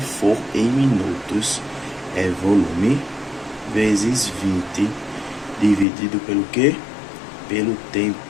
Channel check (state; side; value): drops out; right; at 5.9 s